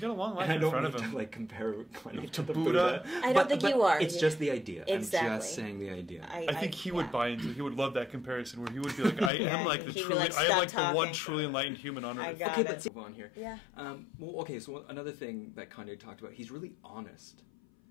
a long life And in front of I don't him. mean to like compare Kanye To the Buddha. I don't think you are. It's just the idea. Exactly. I'm just saying the idea. I think he would buy into. He would love that comparison where he would be like, "I am like the He'd be truly, like, I am like "Stop the one talking." truly enlightened human on I earth." got Okay, it. let's move on here. Yeah. Well, okay, so another thing that Kanye talked about, he's really honest.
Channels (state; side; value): drops out; right; at 9.3 s